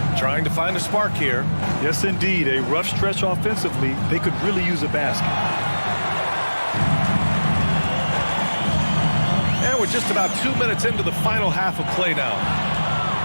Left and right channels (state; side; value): inverted; both; correlation -1.00